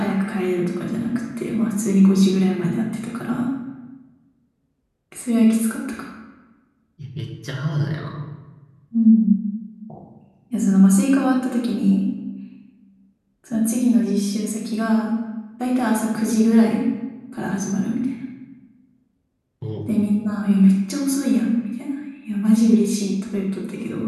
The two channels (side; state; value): both; identical; correlation 1.00